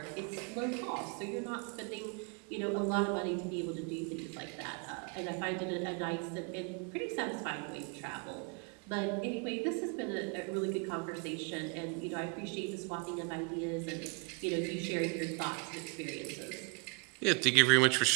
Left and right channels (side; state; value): left; quieter; 33.6 dB